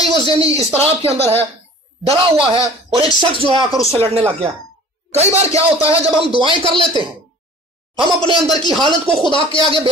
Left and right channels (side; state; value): both; normal; correlation 0.45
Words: ہی وہ ذہنی اضطراب کے اندر ہے، ڈرا ہوا ہے، اور ایک شخص جو ہے آ کر اس سے لڑنے لگ گیا۔ کئی بار کیا ہوتا ہے جب ہم دعائیں کر لیتے ہیں، ہم اپنے اندر کی حالت کو خدا کے آگے